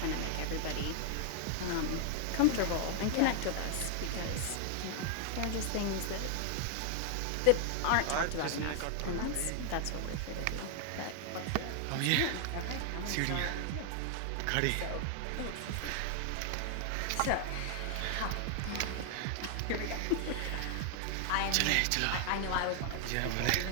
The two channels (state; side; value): different; both; correlation 0.00